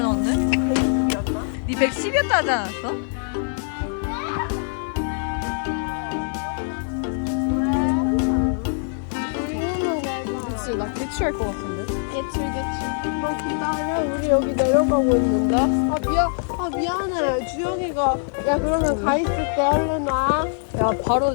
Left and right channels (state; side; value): silent; right; digital silence